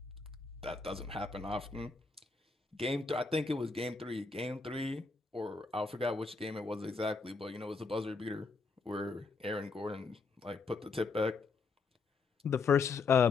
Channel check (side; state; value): right; quieter; 4.4 dB